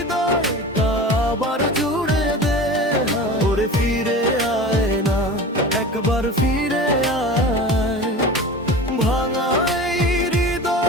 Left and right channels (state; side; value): normal; both; correlation 0.34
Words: আবার জুড়ে দে। ওরে ফিরে আয় না, একবার ফিরে আয়, ভাঙা এই